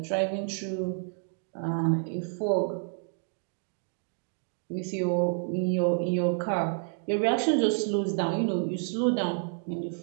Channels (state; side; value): silent; left; 58 dB below the other